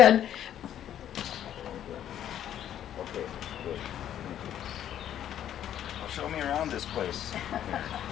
Okay, good. Well, show me around this place. You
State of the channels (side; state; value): right; quieter; 10.7 dB